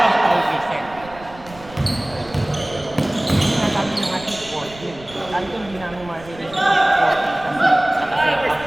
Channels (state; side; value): noise; right; rumble, 19 dB below the sound